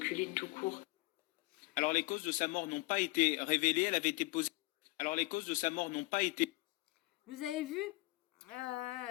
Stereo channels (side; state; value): right; quieter; 22.5 dB